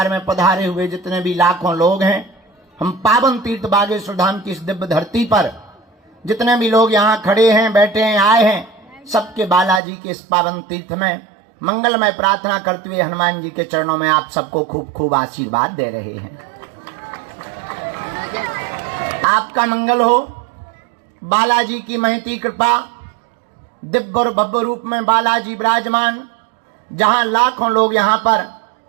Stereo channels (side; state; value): left; drops out; at 9.8 s